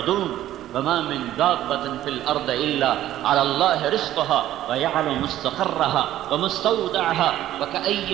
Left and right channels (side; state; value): left; quieter; 13.2 dB